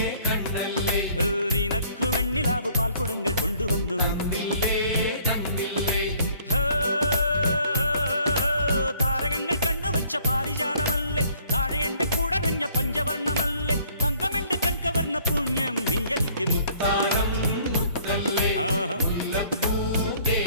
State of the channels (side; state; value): both; inverted; correlation -0.60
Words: കണ്ണല്ലേ, നിനക്കു വെണ്ണിലാവു പാൽക്കുടങ്ങൾ കൊണ്ടുവന്നു തന്നില്ലേ തന്നില്ലേ. താരകങ്ങൾ കണ്ണുവച്ച പാരിജാതമല്ലേ, താഴെ എന്റെ കൂടെ നഞ്ഞ പഞ്ചവർണ്ണമല്ലേ, തങ്കമെന്റെ കൺകവർണ്ണ പുണ്യം നീ എനിക്ക് മുത്താരം മുത്തല്ലേ മുല്ലപ്പൂ